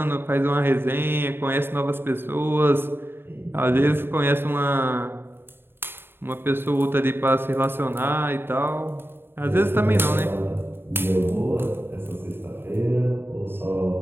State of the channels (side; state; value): left; late; 0.11 ms